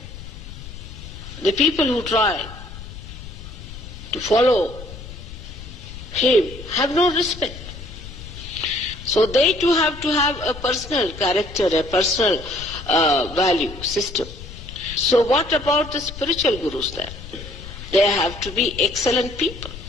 the people who try to follow him have no respect. So they too have to have a personal character, a personal value system. So what about the spiritual gurus then? They have to be excellent people.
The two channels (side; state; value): left; noise; rumble, 13 dB below the sound